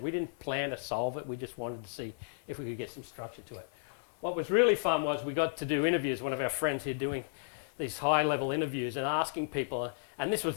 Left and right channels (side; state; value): right; silent; 55 dB below the other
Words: We didn't plan to solve it. We just wanted to see if we could get some structure to it. What was really fun was we got to do interviews. One of our friends here doing these high-level interviews and asking people, and this was